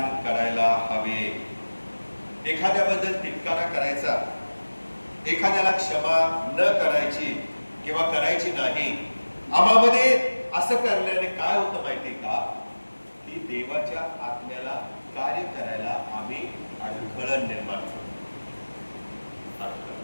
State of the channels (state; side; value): inverted; both; correlation -1.00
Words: करायला हवे. एखाद्याबद्दल तिटकारा करायचा, एखाद्याला क्षमा न करायची किंवा करायची नाही, आम्हामध्ये असं करण्याने काय होतं माहिती का, की देवाच्या आत्म्याला कार्य करायला आम्ही अडथळा निर्माण करतो.